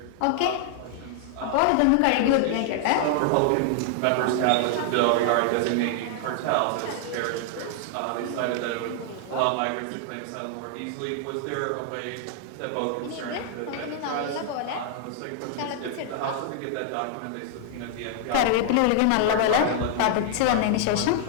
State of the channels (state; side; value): different; both; correlation -0.01